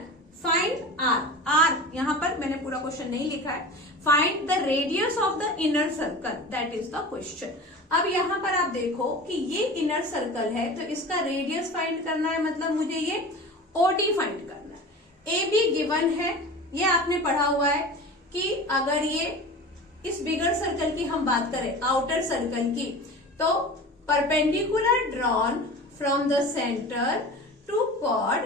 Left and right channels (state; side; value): normal; both; correlation 0.34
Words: फाइंड आर। आर यहाँ पर मैंने पूरा क्वेश्चन नहीं लिखा है। Find the radius of the inner circle, that is the question. अब यहाँ पर आप देखो कि ये इनर सर्कल है, तो इसका रेडियस फाइंड करना है, मतलब मुझे ये ओडी फाइंड करना है। ए बी गिवन है, ये आपने पढ़ा हुआ है कि अगर ये इस बिगर सर्कल की हम बात करें, आउटर सर्कल की, तो perpendicular drawn from the centre to